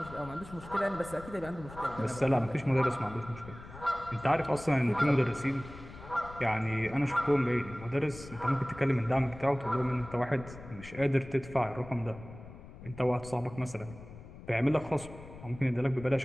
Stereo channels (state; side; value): noise; left; rumble, 16 dB below the sound